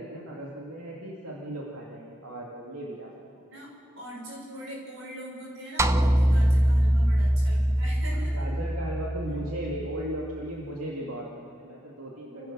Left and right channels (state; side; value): normal; both; correlation 0.89